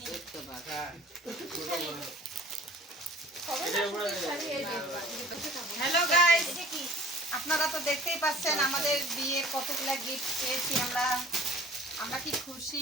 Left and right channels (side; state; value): both; normal; correlation 0.47